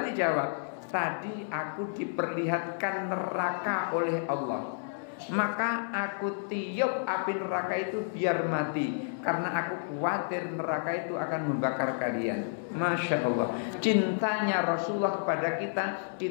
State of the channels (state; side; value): silent; right; 57 dB below the other